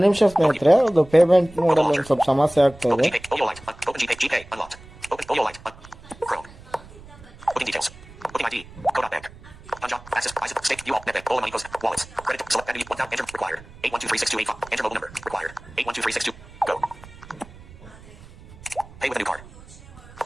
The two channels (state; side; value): noise; right; rumble, 20 dB below the sound